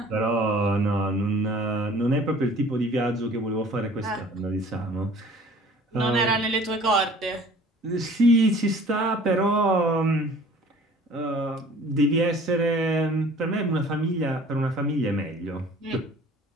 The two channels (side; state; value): both; normal; correlation 0.49